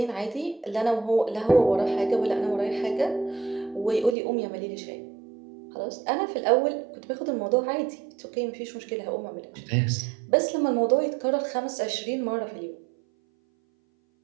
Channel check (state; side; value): drops out; left; at 4.2 s